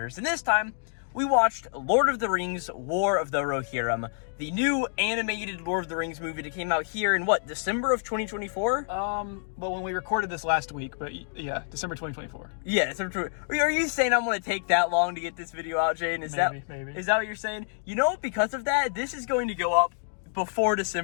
and this time we watched Lord of the Rings: War of the Rohirrim, the new animated Lord of the Rings movie that came out here in what, December of 2024? Well, when we recorded this last week, but yeah, December 2024. Yeah, December. Are you saying I'm going to take that long to get this video out, Jaden? Maybe. Is that what you're saying? You know, because of that, this is going to go up before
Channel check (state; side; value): silent; right; digital silence